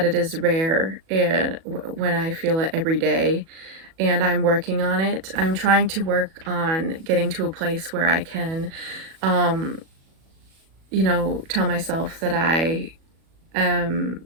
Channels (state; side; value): late; left; 37 ms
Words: it is rare and when I feel it every day, and I'm working on it. I'm trying to work on getting to a place where I can, um, tell myself that I